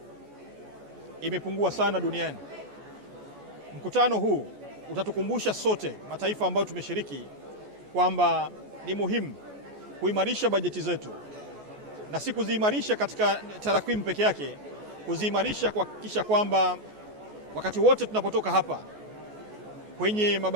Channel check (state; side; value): late; left; 14 ms